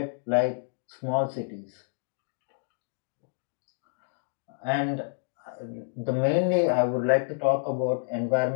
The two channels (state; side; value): silent; right; digital silence